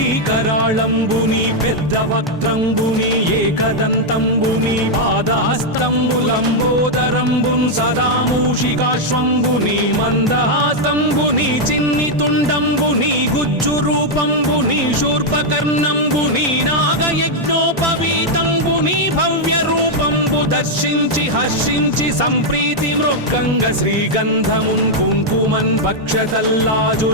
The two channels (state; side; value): normal; both; correlation -0.01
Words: కరాళంబుని పెద్ద వక్త్రంబుని ఏకదంతంబుని పాదాస్తంబులంబోదరంబున్ సదా మూషికాశ్వంబుని మందహాసంబుని చిన్ని తుండంబుని గుజ్జు రూపంబుని శూర్పకర్ణంబుని నాగయజ్ఞోపవీతంబుని భవ్య రూపంబు దర్శించి హర్షించి సంప్రీతి మృక్కంగ శ్రీగంధమున్ కుంకుమన్